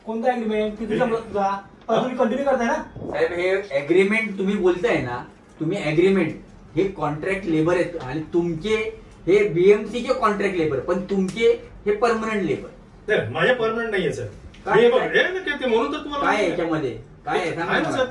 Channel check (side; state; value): both; identical; correlation 1.00